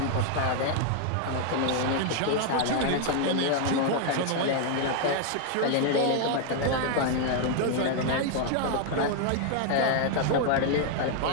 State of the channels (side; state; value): both; different; correlation 0.00